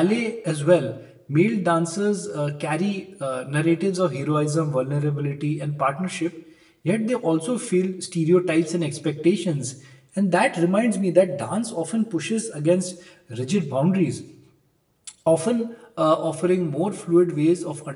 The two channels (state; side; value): identical; both; correlation 1.00